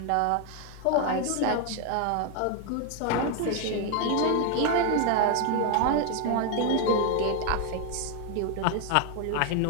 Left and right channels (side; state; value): both; different; correlation 0.01